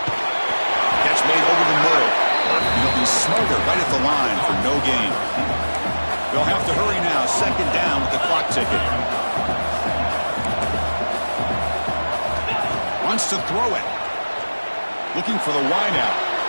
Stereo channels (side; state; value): both; inverted; correlation -1.00